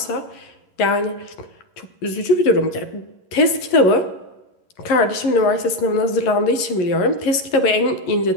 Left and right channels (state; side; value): late; right; 11 ms